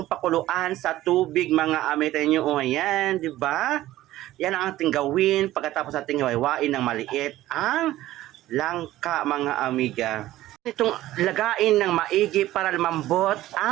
pakuluan sa tubig mga amiga niyo. O yan, di ba? Yan ang ating gawin pagkatapos natin iwain ng maliit ang langka mga amiga. Itong lagain ng maigi para lumambot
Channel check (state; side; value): quieter; left; 15.2 dB